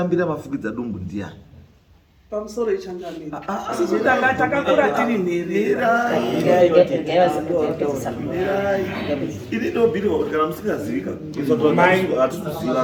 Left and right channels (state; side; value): identical; both; correlation 1.00